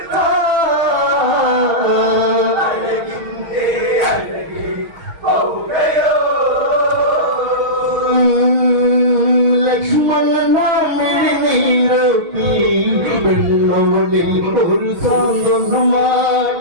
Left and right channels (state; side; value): late; left; 6.4 ms